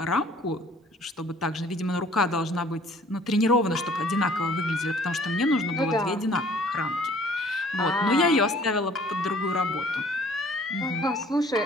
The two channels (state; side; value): normal; both; correlation 0.55